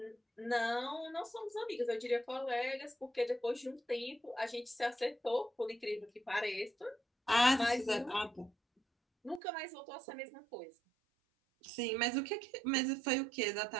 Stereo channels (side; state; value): left; drops out; at 9.4 s